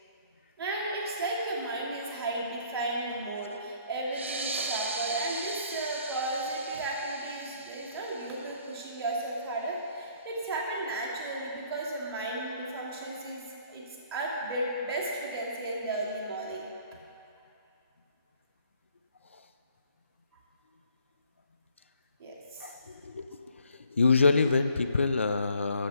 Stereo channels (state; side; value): inverted; both; correlation -0.61